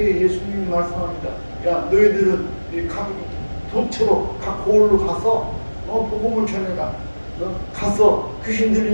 예수님이 말씀합니다. 야, 너희들은 각 도처로 각 고을로 가서 복음을 전해라. 가서 귀신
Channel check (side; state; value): both; inverted; correlation -1.00